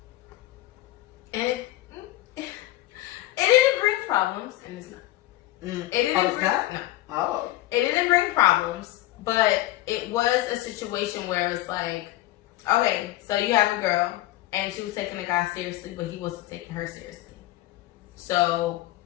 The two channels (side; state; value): right; quieter; 16.3 dB